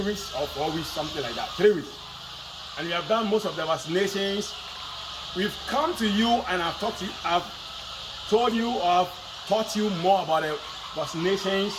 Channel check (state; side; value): identical; both; correlation 1.00